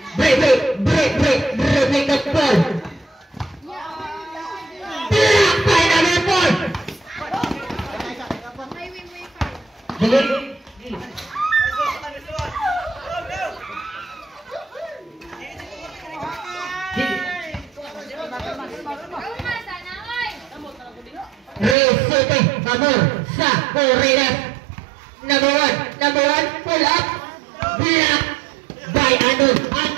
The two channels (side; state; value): left; drops out; at 21.8 s